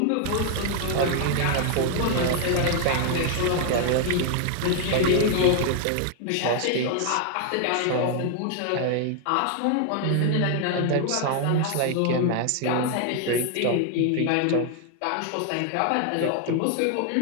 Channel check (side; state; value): both; different; correlation 0.00